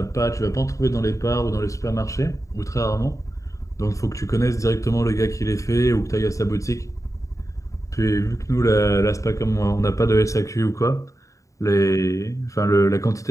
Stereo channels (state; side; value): late; right; 0.16 ms